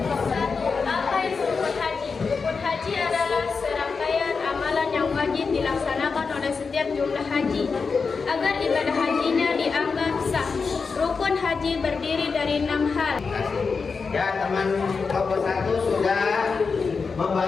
Apa itu rukun haji? Rukun haji adalah serangkaian amalan yang wajib dilaksanakan oleh setiap jumlah haji agar ibadah hajinya dianggap sah. Rukun haji berdiri dari 6 hal. Ya, teman kelompok 1 sudah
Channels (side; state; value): right; quieter; 5.0 dB